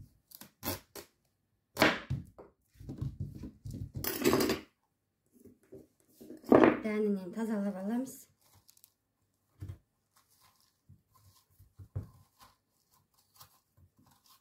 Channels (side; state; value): both; identical; correlation 1.00